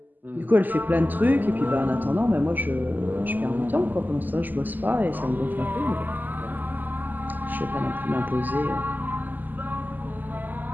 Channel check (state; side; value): late; left; 0.086 ms